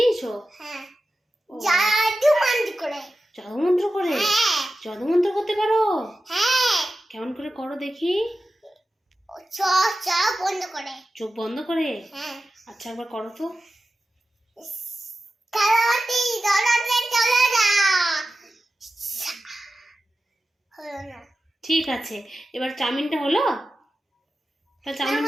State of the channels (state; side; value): normal; both; correlation 0.93